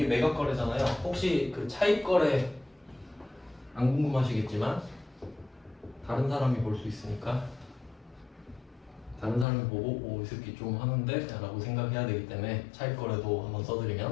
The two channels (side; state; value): right; drops out; at 9.5 s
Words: 매각 거래잖아요. 혹시 그 차입 거래 안 궁금하시겠지만 다른 사람이 볼 수 있으니까 다른 사람이 보고 이 새끼 좀 하는데? 라고 생각해야 되기 때문에 차입 거래도 한번